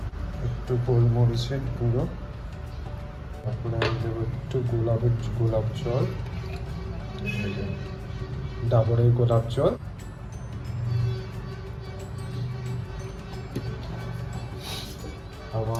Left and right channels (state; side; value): identical; both; correlation 1.00